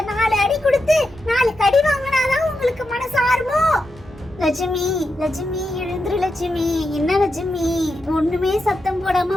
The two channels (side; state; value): both; normal; correlation 0.87